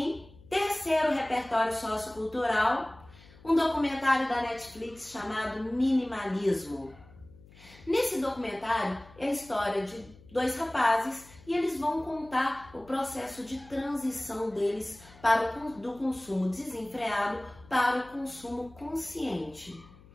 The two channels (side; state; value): left; noise; hum, 23 dB below the sound